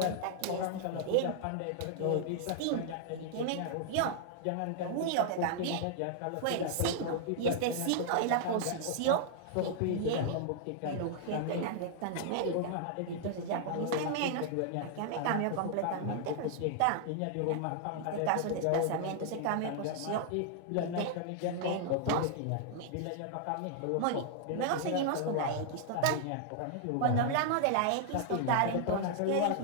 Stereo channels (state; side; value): different; both; correlation -0.01